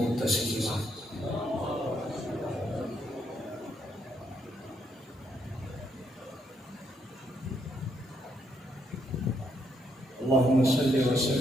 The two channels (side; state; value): both; normal; correlation 0.75